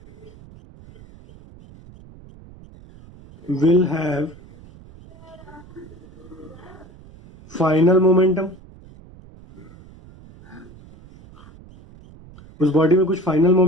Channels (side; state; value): right; noise; rumble, 22 dB below the sound